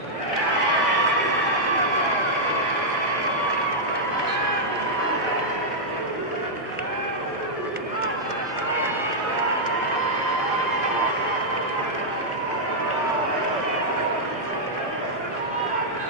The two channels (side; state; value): both; normal; correlation -0.06